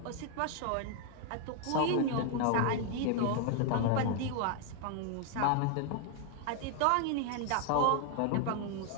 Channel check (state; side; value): different; both; correlation 0.00